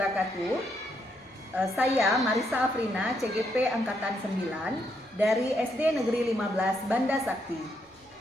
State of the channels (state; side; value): normal; both; correlation 0.77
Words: Saya Marisa Afrina, CGP Angkatan 9 dari SD Negeri 15 Banda Sakti,